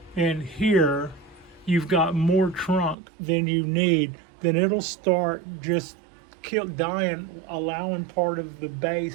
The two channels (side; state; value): left; drops out; at 3.0 s